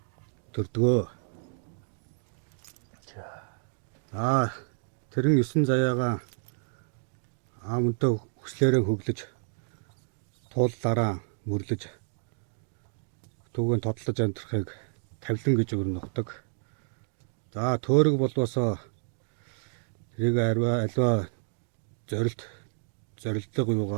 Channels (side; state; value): left; silent; digital silence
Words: төрдгөө. За, тэрэн 9 заяагаа аамөнтөө хүслээрээ хөглөж тууллаараа мөрлөж түүгээр тодлож амьдрахыг тавлан гэж өрнөгдөг. За, төөрөг болвосоо тэрийг альва зорилдог